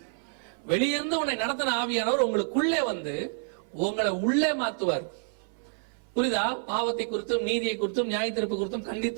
வெளியிருந்து உன்னை நடத்தின ஆவியானவர் உங்களுக்குள்ளே வந்து உங்களை உள்ளே மாத்துவார். புரியுதா? பாவத்தை குறித்தும் நீதியை குறித்தும் நியாய தீர்ப்பு குறித்தும்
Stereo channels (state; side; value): silent; left; 59 dB below the other